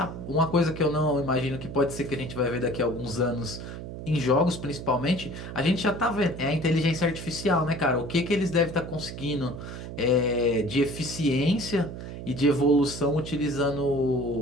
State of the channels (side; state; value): right; noise; hum, 9 dB below the sound